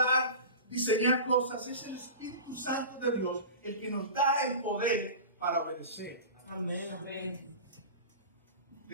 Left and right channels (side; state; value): both; inverted; correlation -0.32